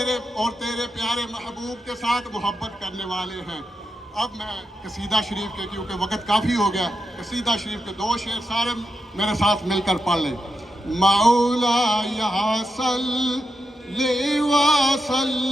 اور تیرے پیارے محبوب کے ساتھ محبت کرنے والے ہیں۔ اب میں قصیدہ شریف کے، کیونکہ وقت کافی ہو گیا، قصیدہ شریف کے 2 شعر سارے میرے ساتھ مل کر پڑھ لیں۔ مولا صلی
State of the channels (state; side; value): normal; both; correlation 0.86